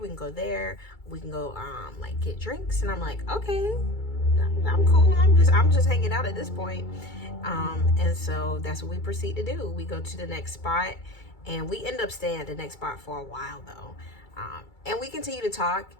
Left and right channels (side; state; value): right; late; 2.3 ms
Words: can go there, we can go like get drinks. And I'm like, okay, I'm cool. I'm just hanging out at this point. And so that's what we proceed to do. We go to the next spot and we end up staying at the next spot for a while though. And we continue to talk.